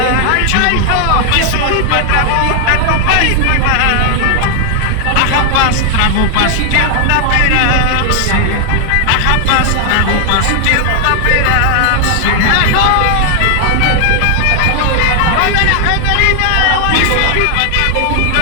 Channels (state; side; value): different; both; correlation 0.00